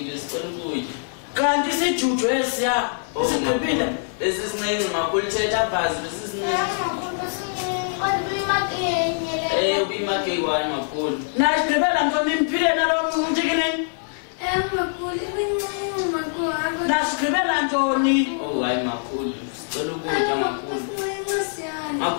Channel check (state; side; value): silent; right; 63 dB below the other